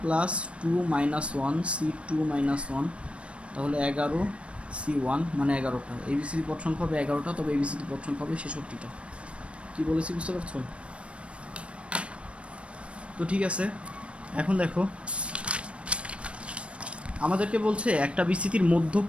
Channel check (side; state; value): left; late; 0.060 ms